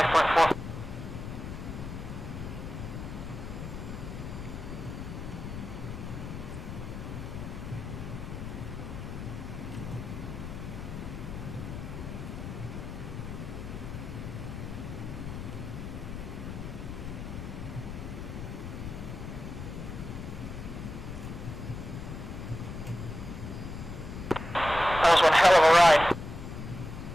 That was one hell of a ride.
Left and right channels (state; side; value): noise; left; rumble, 7 dB below the sound